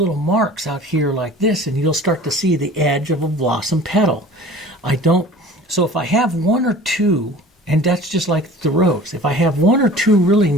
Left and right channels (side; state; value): both; normal; correlation 0.44